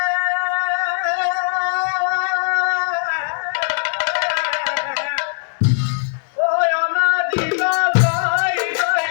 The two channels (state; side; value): silent; right; 65 dB below the other